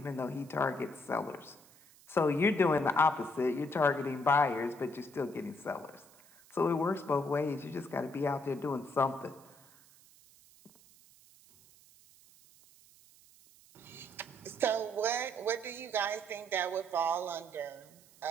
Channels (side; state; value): right; noise; hiss, 25 dB below the sound